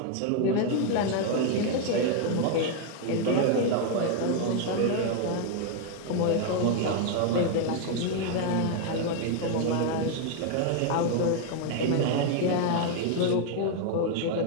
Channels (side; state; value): both; different; correlation 0.00